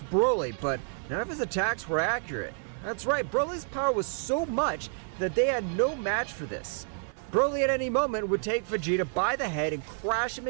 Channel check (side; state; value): left; silent; 58 dB below the other